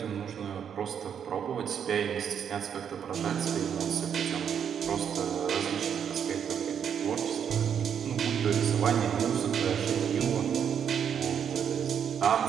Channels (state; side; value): quieter; left; 8.1 dB